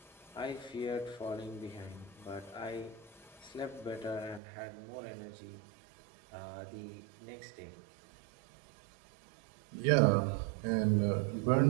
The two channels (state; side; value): drops out; left; at 4.4 s